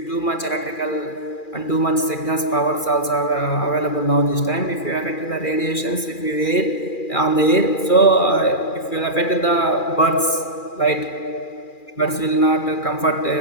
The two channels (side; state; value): right; late; 2.4 ms